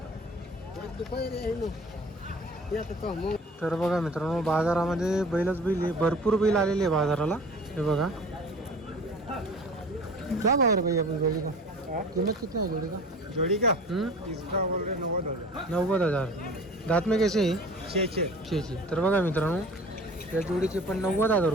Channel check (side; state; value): both; normal; correlation 0.42